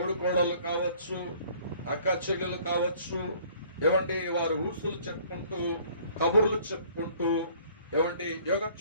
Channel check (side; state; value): both; inverted; correlation -0.56